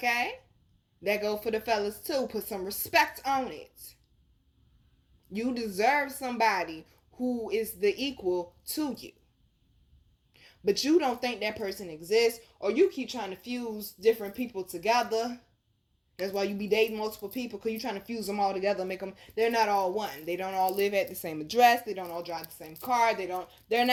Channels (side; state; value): both; identical; correlation 1.00